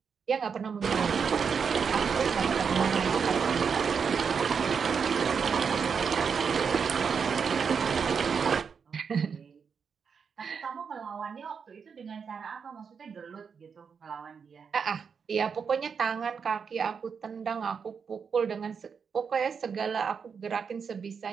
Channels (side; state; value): left; quieter; 6.2 dB